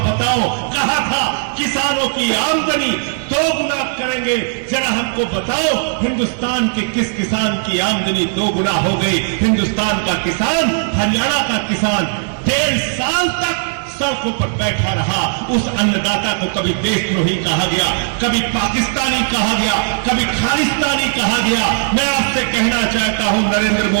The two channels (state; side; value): silent; left; 64 dB below the other